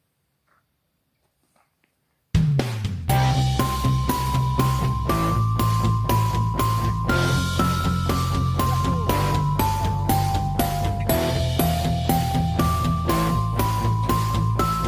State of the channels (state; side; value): identical; both; correlation 1.00